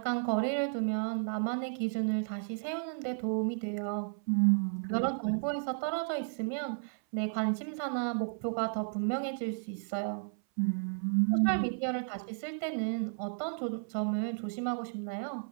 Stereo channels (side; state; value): left; silent; 56 dB below the other